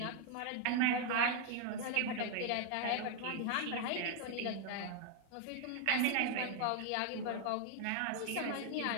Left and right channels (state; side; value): different; both; correlation 0.00